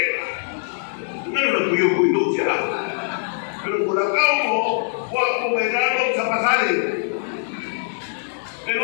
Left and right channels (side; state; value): right; silent; 64 dB below the other